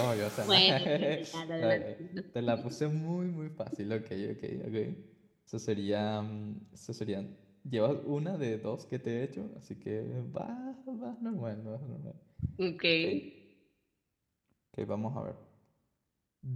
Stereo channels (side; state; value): both; identical; correlation 1.00